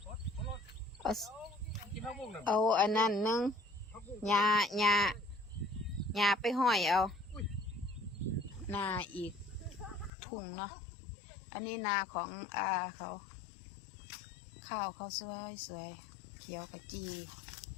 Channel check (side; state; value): right; drops out; at 10.1 s